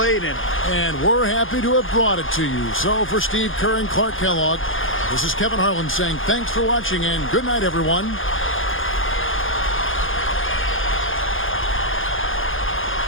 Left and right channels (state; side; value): late; right; 0.58 ms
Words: in it. And we're happy to have brought it to you. So for Steve Kerr and Clark Kellogg, this is Kevin Harlan saying thanks for watching and good night, everyone.